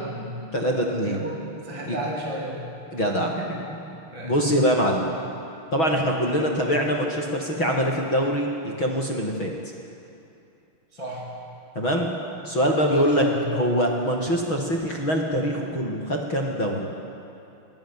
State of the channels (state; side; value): late; right; 6.2 ms